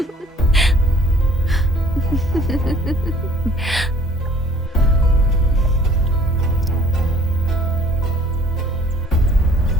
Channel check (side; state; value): both; normal; correlation 0.55